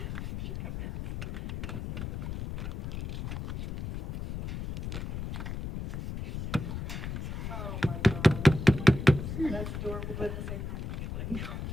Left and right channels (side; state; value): left; noise; rumble, 5 dB below the sound